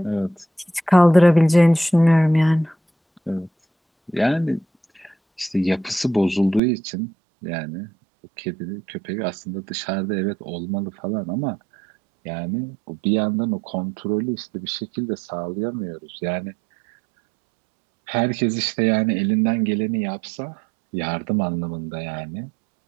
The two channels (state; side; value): drops out; left; at 6.6 s